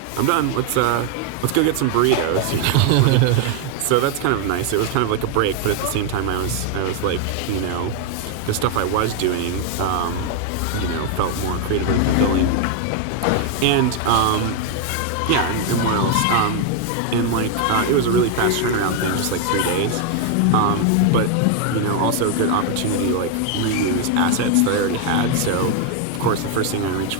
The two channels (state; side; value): different; both; correlation 0.01